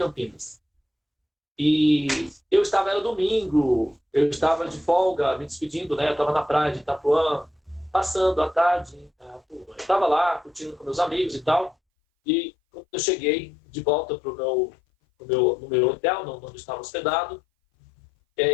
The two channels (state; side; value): drops out; right; at 11.8 s